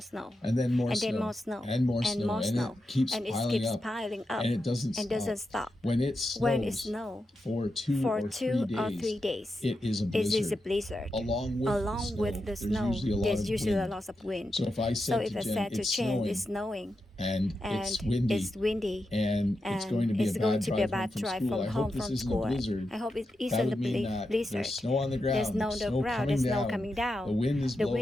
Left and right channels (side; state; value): both; normal; correlation 0.88